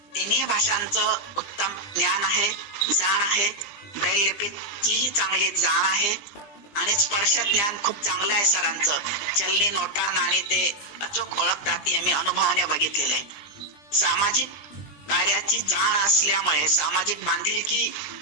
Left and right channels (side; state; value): right; late; 20 ms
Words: तिन्ही भाषांचं उत्तम ज्ञान आहे, जाण आहे, ब्रेल लिपीचीही चांगली जाण आहे आणि स्पर्श ज्ञान खूप चांगलं आहे सरांचं. चलनी नोटा नाणी ते अचूक ओळखतात, हे मी अनुभवाने बघितलेलं आहे. सामाजिक कार्याची जाण असल्यामुळे, सामाजिक